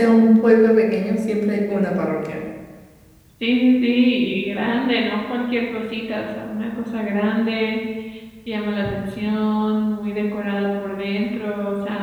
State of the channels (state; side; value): identical; both; correlation 1.00